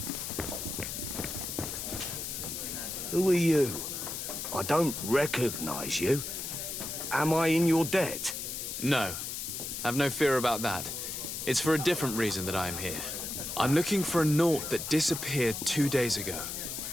Who are you? I don't recognize you. Am I in your debt? No. Have no fear about that. It's for a different reason that I am here. I'm looking for a Naut that disappeared 2 days ago,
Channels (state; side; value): noise; left; hiss, 5 dB below the sound